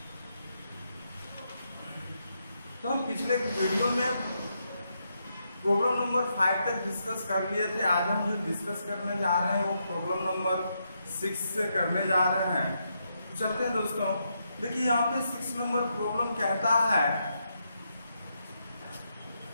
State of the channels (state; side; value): inverted; both; correlation -0.81